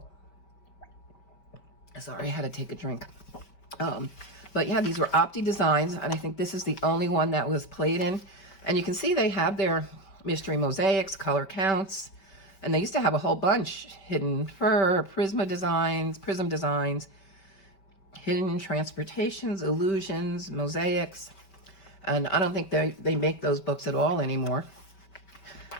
Sorry, I had to take a drink. But yeah, these were Opti Designs, and I think this is the only one that was played in. And you can see they have their mystery mosaics, color counts, and they used to have a whole bunch: hidden fur, prism designs, hidden transportations, illusions, mosaics. And I don't think they make those books at all anymore.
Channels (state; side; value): late; right; 5.2 ms